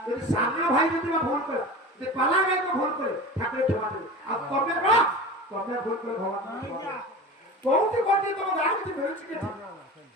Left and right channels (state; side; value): normal; both; correlation 0.33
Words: যদি সামনে ভাই যদি ভুল করে যদি পালা গায়ক ভুল করে ঠাকুরের ক্ষমা দেবে আর কবে ভুল করে ভগবান বহুত কোটি তোমার গান কি বেরোচ্ছে কি